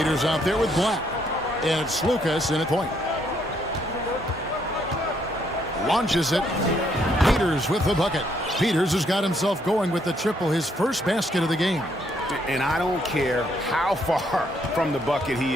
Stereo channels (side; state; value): both; normal; correlation 0.71